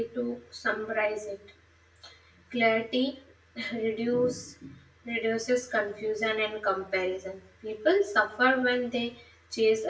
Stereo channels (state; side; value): identical; both; correlation 1.00